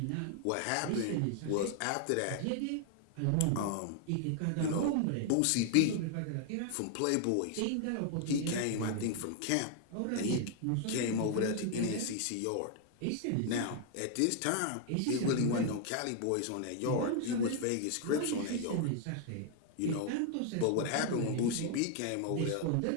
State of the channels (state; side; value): different; both; correlation 0.00